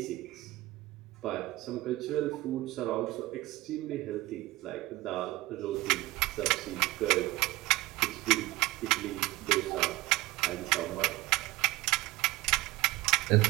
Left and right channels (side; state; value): left; quieter; 18.8 dB